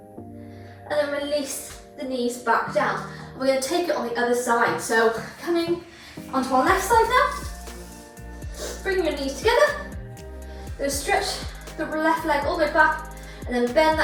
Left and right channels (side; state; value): both; identical; correlation 1.00